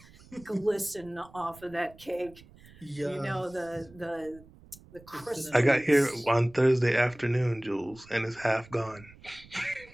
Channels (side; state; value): right; noise; rumble, 23 dB below the sound